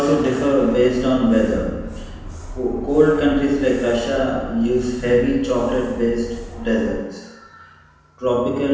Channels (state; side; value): identical; both; correlation 1.00